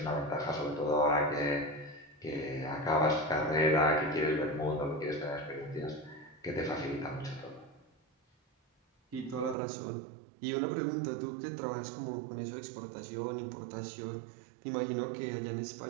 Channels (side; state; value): left; drops out; at 9.6 s